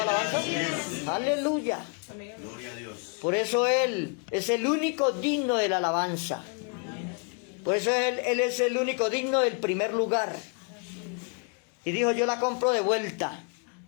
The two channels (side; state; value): right; quieter; 38.3 dB